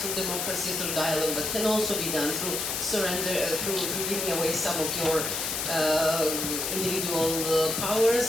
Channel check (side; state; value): left; noise; hiss, 1 dB below the sound